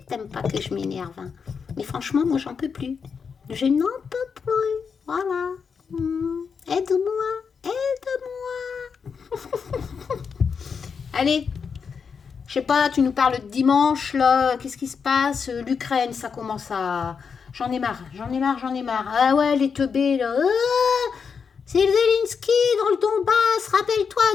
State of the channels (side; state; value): right; quieter; 6.0 dB